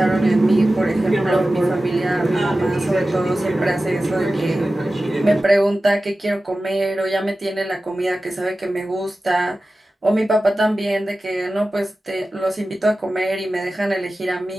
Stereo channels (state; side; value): normal; both; correlation 0.95